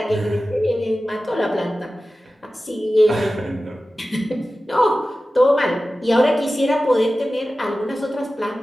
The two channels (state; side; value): normal; both; correlation 0.95